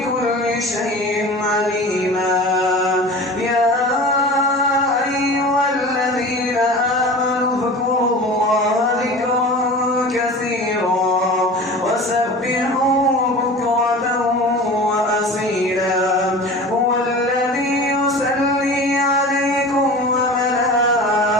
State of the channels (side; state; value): both; normal; correlation 0.36